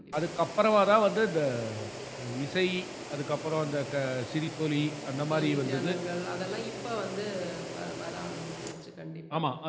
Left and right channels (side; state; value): both; identical; correlation 1.00